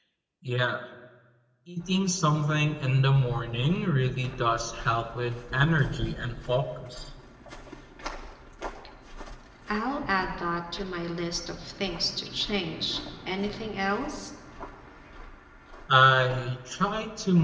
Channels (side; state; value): both; identical; correlation 1.00